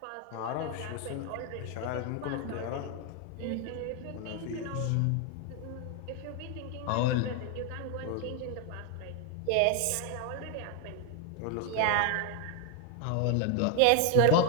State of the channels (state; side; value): different; both; correlation 0.01